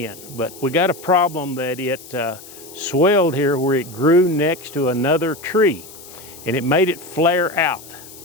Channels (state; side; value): noise; left; hiss, 18 dB below the sound